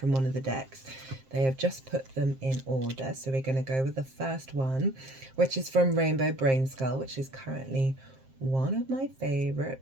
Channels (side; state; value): left; late; 7.6 ms